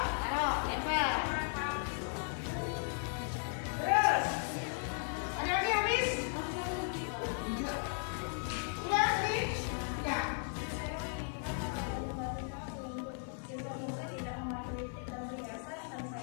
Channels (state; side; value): silent; right; 54 dB below the other